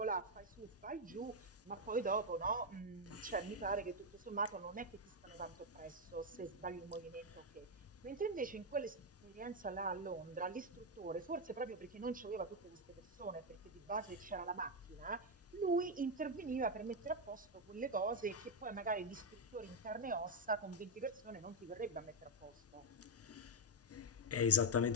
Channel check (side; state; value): both; normal; correlation 0.01